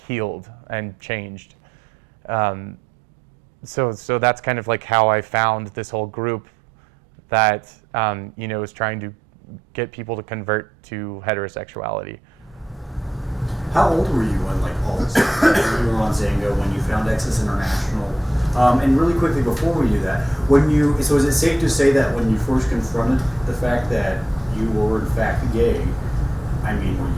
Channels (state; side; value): normal; both; correlation 0.84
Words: and changed. So that's kind of like how I found this whole group that, you know, is trying to get people to convert to heterosexuality. How old were you when like all this stuff? You were on Zynga when you found Exodus International? And really quickly before we do that, so is it safe to say that when you first confronted the fact that you were in fact gay, I mean, were